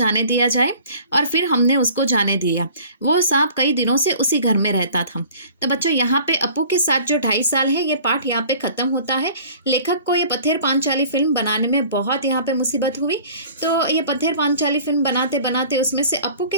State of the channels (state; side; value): inverted; both; correlation -0.48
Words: दिया जाए, और फिर हमने उसको जाने दिया। वो सांप कई दिनों से उसी घर में रहता था। तो बच्चों यहाँ पे अपू के साथ जो 2.5 साल है, ये पाठ यहाँ पे खत्म होता है। लेखक को ये पत्थर पांचाली फिल्म बनाने में बहुत यहाँ पे मुसीबत हुई। तो ये पत्थर पांचाली फिल्म बनाते बनाते उसमें से अपू